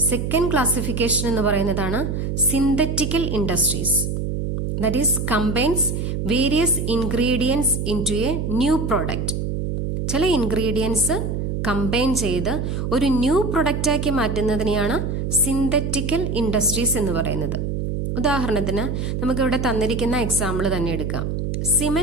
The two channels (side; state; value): right; noise; hum, 2 dB below the sound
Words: സെക്കൻഡ് ക്ലാസിഫിക്കേഷൻ എന്ന് പറയുന്നതാണ് synthetical industries. That is combines various ingredients into a new product. ചില ഇൻഗ്രീഡിയൻസ് കമ്പൈൻ ചെയ്ത് ഒരു ന്യൂ പ്രൊഡക്റ്റാക്കി മാറ്റുന്നതിനെയാണ് സിന്തറ്റിക്കൽ ഇൻഡസ്ട്രീസ് എന്ന് പറയുന്നത്. ഉദാഹരണത്തിന് നമുക്കിവിടെ തന്നിരിക്കുന്ന എക്സാമ്പിൾ തന്നെ എടുക്കാം.